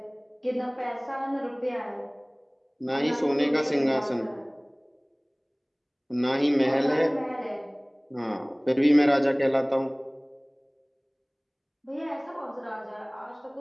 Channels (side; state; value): both; identical; correlation 1.00